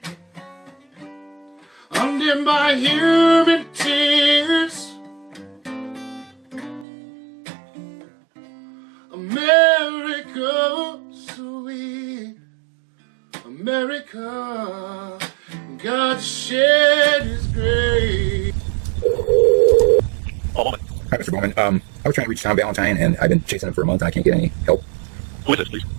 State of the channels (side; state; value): left; drops out; at 6.9 s